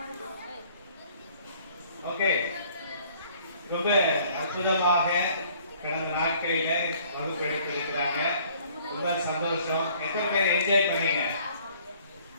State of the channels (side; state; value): both; inverted; correlation -0.57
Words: ஓகே, ரொம்ப அற்புதமாக கடந்த நாட்களில வகுப்பு எடுத்திருக்கிறாங்க. ரொம்ப சந்தோஷம். எத்தனை பேர் என்ஜாய் பண்ணீங்க?